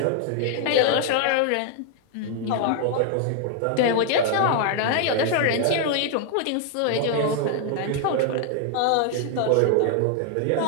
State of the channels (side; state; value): both; different; correlation 0.00